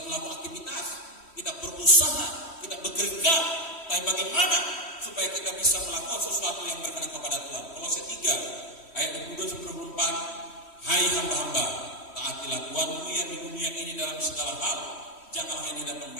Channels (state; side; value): late; right; 3.1 ms